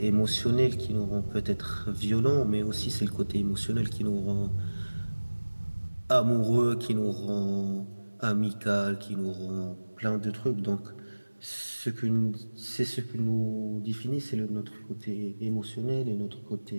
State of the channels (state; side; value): inverted; both; correlation -1.00